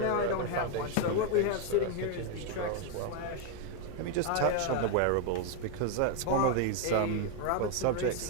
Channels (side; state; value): both; different; correlation 0.01